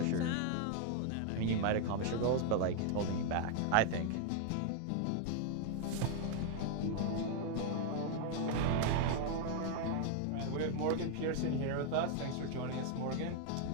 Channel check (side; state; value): both; different; correlation 0.00